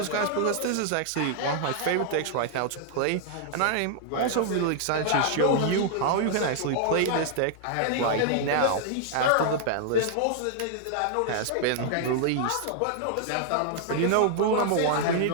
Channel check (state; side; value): different; both; correlation -0.01